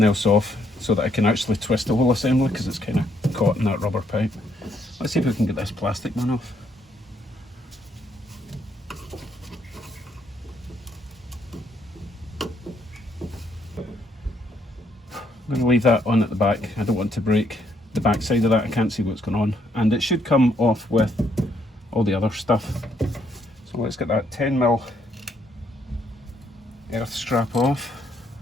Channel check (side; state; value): both; normal; correlation 0.72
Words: else off so that I can actually twist the whole assembly, because it's kind of caught in that rubber pipe. Let's see if we can get this plastic one off. I'm going to leave that on at the back. I don't want to break the back side of that. I can't see what's going on, and it should come off with all the other stuff. So let's get that 10mm earth strap off.